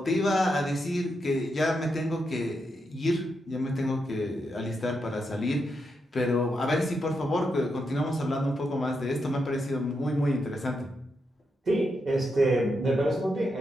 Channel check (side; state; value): both; normal; correlation 0.84